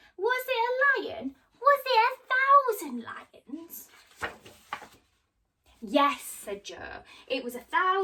Was it a lion? Was it 1,000 lions? Yes, said Joe, it was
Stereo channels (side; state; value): both; identical; correlation 1.00